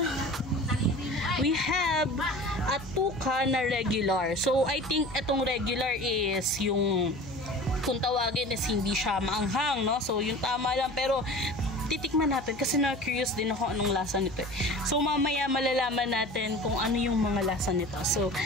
we have a tuka na regular. So, I think itong regular is yung kung tawagin is hindi siya maanghang, no? So, yung tama lang. Pero, titikman natin kasi na-curious din ako anong lasa nito. So, mamaya malalaman natin kung ano yung mga lasa nito. So,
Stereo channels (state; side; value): noise; left; hum, 18 dB below the sound